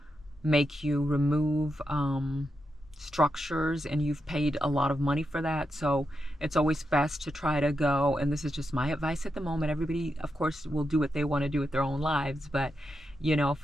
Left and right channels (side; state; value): both; normal; correlation 0.86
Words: make you remove structures, and you've paid a lot of money for that. So it's always best to try to go, and this is just my advice at the moment. Everybody, of course, will do what they want to do with their own lives, but you know,